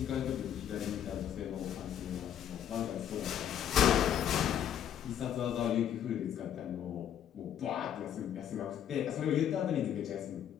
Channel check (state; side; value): quieter; right; 9.8 dB